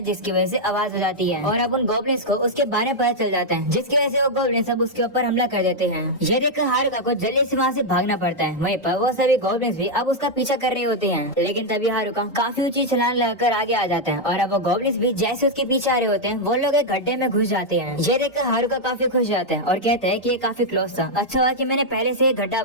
जिसकी वजह से आवाज हो जाती है और अब उन गॉब्लिन्स को उसके बारे में पता चल जाता है, जिसकी वजह से वो गॉब्लिन्स अब उसके ऊपर हमला कर देते हैं। ये देखकर हारुका को जल्दी से वहाँ से भागना पड़ता है। वहीं पर वो सभी गॉब्लिन्स भी अब उसका पीछा कर रहे होते हैं, लेकिन तभी हारुका काफी ऊंची छलांग लगाकर आगे आ जाता है और अब वो गॉब्लिन्स भी जैसे उसके पीछे आ रहे होते हैं वो लोग एक गड्ढे में घुस जाते हैं। ये देखकर हारुका काफी खुश जाता है और कहता है कि ये काफी क्लोज था, अच्छा हुआ कि मैंने पहले से एक गड्ढा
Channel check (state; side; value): normal; both; correlation -0.02